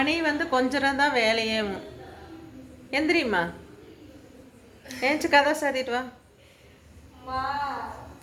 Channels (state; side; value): identical; both; correlation 1.00